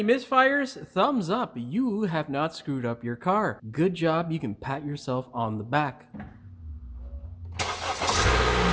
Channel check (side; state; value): both; identical; correlation 1.00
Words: misfires, thumbs up. You have not screwed up your car. Good job. You can pat yourself on the back.